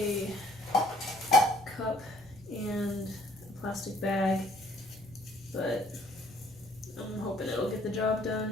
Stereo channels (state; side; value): normal; both; correlation 0.60